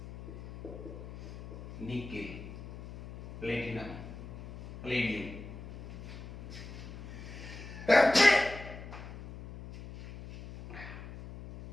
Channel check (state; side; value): noise; left; hum, 12 dB below the sound